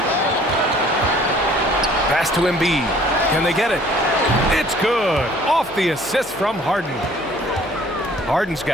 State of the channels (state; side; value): noise; left; hum, 24 dB below the sound